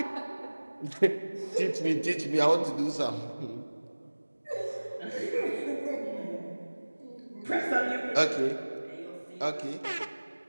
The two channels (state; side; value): inverted; both; correlation -1.00